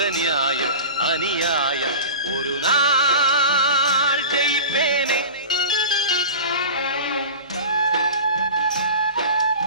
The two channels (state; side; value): inverted; both; correlation -0.33